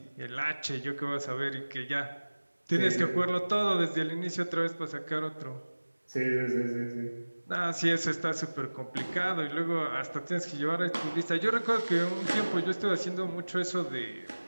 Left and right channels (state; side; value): inverted; both; correlation -1.00